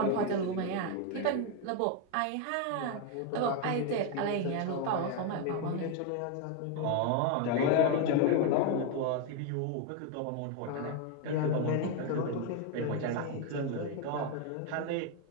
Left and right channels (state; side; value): different; both; correlation 0.01